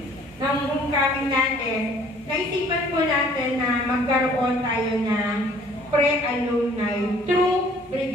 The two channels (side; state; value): both; normal; correlation 0.56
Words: ng homecoming natin, naisipan po natin na magkaroon tayo ng pre-alumni through